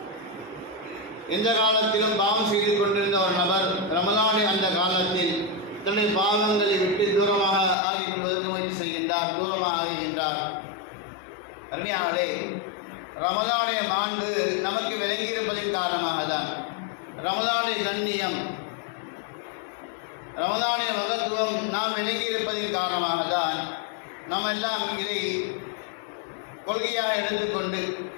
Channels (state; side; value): drops out; right; at 7.8 s